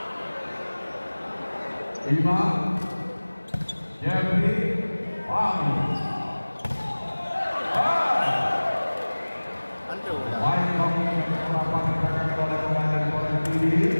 5, Fahmi. Antu dah. Baik kami melakukan gerakan oleh komandan Polres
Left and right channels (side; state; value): both; inverted; correlation -1.00